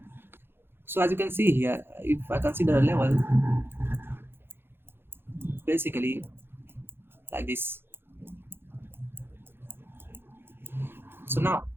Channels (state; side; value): late; left; 0.11 ms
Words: So as you can see here, if I consider a level, basically like this. So now,